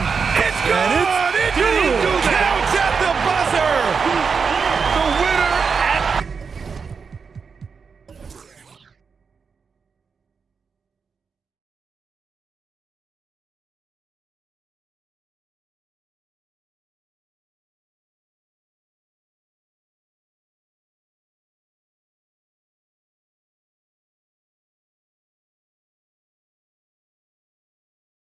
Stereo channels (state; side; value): quieter; left; 5.6 dB